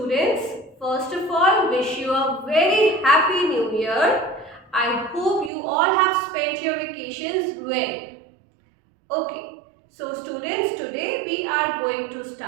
first of all, wish you a very happy new year. I hope you all have spent your vacations well. Okay, so students, today we are going to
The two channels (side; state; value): left; drops out; at 5.5 s